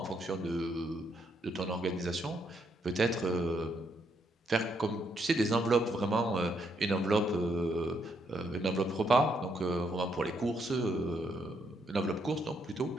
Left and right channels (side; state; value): both; normal; correlation 0.75